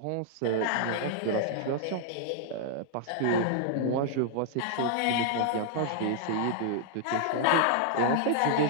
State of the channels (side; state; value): both; different; correlation -0.01